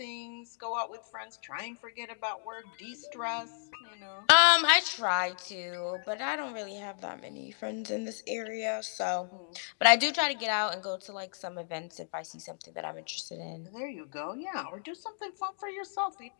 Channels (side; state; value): right; silent; digital silence